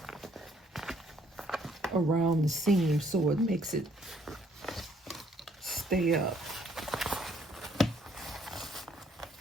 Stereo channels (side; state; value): both; normal; correlation 0.65